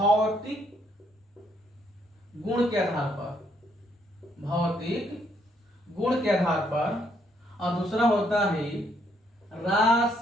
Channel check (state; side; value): normal; both; correlation 0.71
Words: गुण के आधार पर, भौतिक गुण के आधार पर, और दूसरा होता है